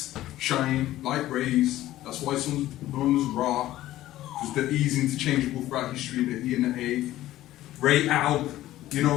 shine, light rays. That's why some known as raw. Because they're easy interchangeable throughout history, the E and the A. Ray, al, you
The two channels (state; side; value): quieter; right; 14.7 dB